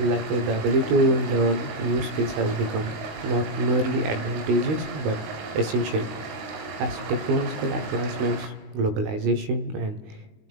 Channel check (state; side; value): late; left; 20 ms